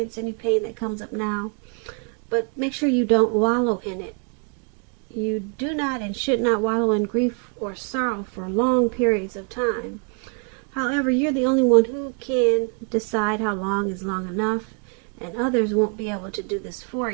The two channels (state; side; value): quieter; left; 39.4 dB